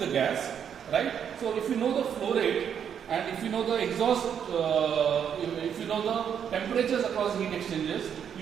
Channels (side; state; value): left; quieter; 8.2 dB